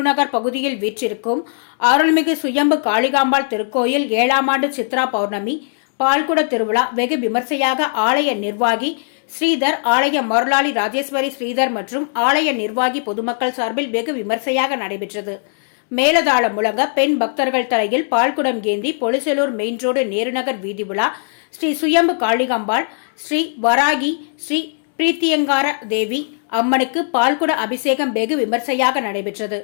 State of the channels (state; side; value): silent; right; digital silence